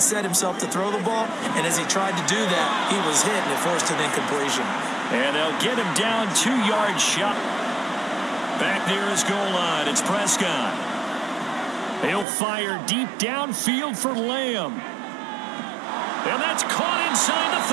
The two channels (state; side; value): drops out; left; at 12.2 s